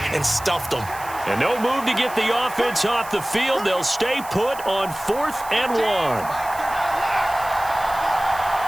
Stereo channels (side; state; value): right; noise; hiss, 16 dB below the sound